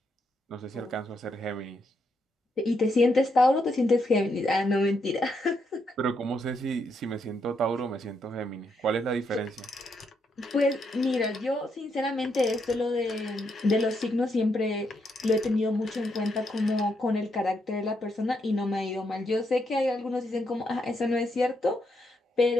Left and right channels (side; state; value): both; normal; correlation 0.79